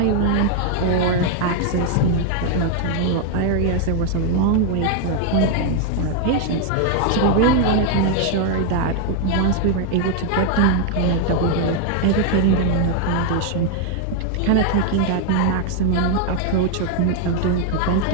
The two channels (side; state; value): both; different; correlation 0.00